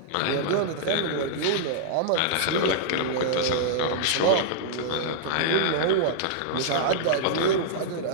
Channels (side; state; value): both; different; correlation -0.02